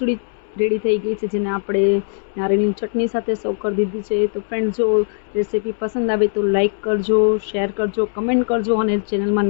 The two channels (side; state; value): right; silent; 66 dB below the other